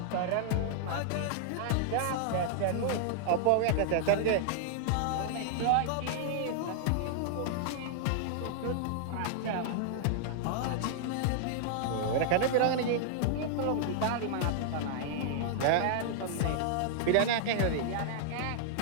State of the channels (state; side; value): different; both; correlation -0.01